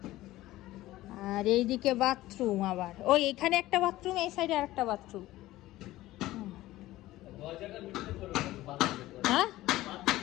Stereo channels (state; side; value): quieter; right; 16.5 dB